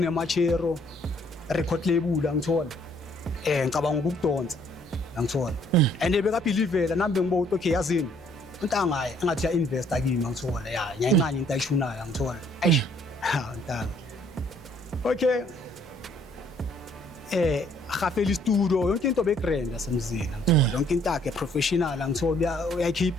Machero record label ngithola ngicabanga ukudonsa ngithola and bekabelievela nambe ngibo okay yazini untanga engathi ya investor kimi ngithola ya nyayincane into ayishunayo ngithola eish untanga okay khafeli studio yonke into begrand asemzini ngithola yonke into yakhe professional ngithola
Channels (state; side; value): normal; both; correlation 0.63